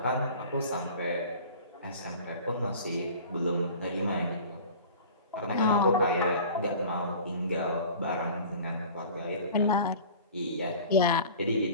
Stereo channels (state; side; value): inverted; both; correlation -0.42